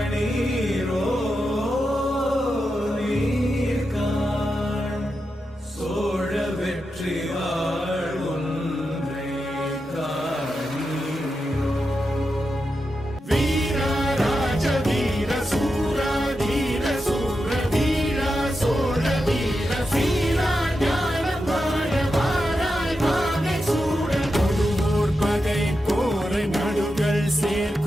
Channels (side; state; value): both; normal; correlation 0.88